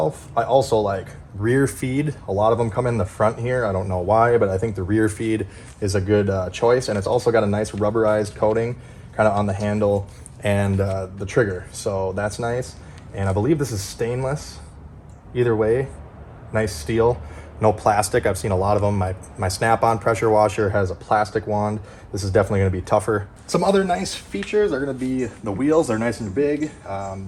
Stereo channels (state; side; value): identical; both; correlation 1.00